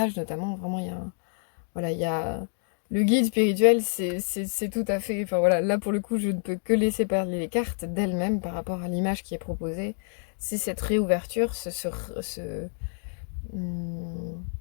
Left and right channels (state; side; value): silent; right; 59 dB below the other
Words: notamment, vraiment il y a voilà, il y a le guide spirituel, c'est tout à fait, enfin voilà, là pour le coup je ne peux que laisser parler les cartes d'elles-mêmes par rapport à l'image qui est proposée, c'est cette réouverture, hum,